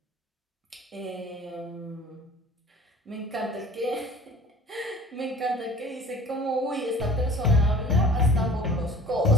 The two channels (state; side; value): normal; both; correlation 0.45